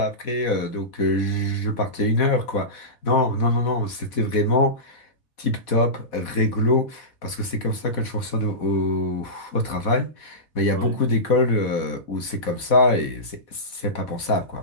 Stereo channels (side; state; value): right; late; 4.1 ms